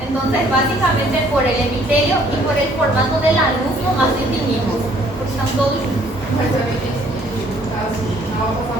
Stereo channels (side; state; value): both; normal; correlation 0.61